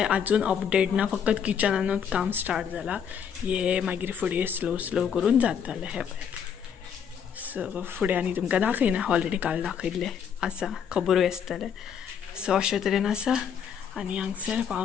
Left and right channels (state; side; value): quieter; right; 7.6 dB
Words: आजून अपडेट ना. फकत किचनानूच काम स्टार्ट जालां. हे मागीर फुडें स्लो स्लो करून जातलें. हे पळयात. सो फुडें आनी तुमकां दाखयना. ऑलरेडी काल दाखयल्लें आसा. खबरूय आसतलें. सो अशे तरेन आसा. आनी हांगसर